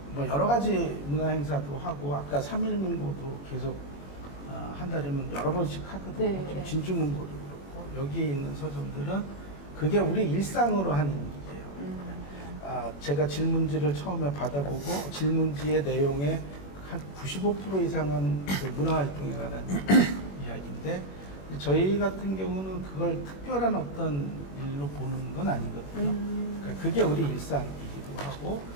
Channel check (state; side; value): late; right; 21 ms